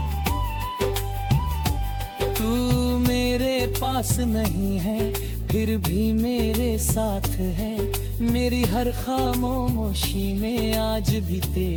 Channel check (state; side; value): identical; both; correlation 1.00